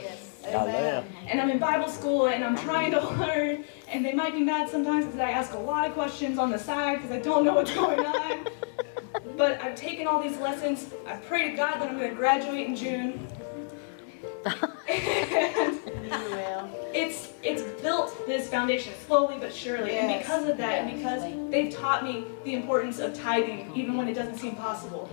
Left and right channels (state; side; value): silent; right; digital silence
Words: Hallelujah. And I'm in Bible school and I'm trying to learn. And they might be mad sometimes because I ask a lot of questions on the side because I don't know what's going on. But I've taken all these lessons. I pray to God that I'm going to graduate in June. You will. It's built this foundation slowly but surely. Yes. And because of that, and because they've taught me the importance of tithing, even when it doesn't seem possible.